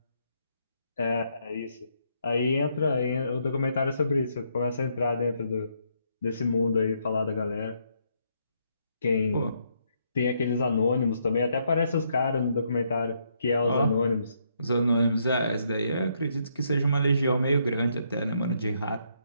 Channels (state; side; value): inverted; both; correlation -0.74